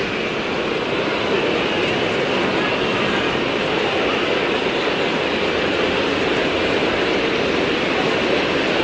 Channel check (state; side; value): identical; both; correlation 1.00